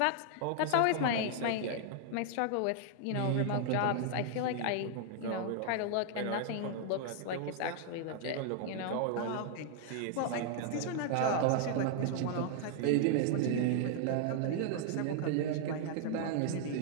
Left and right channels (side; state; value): both; different; correlation 0.00